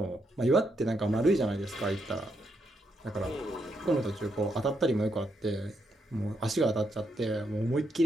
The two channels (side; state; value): both; normal; correlation 0.79